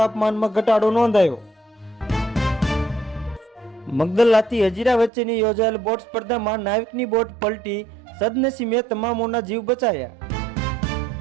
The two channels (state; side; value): drops out; left; at 5.1 s